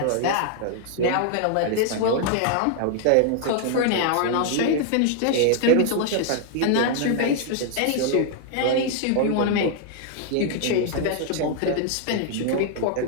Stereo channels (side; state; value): both; different; correlation 0.00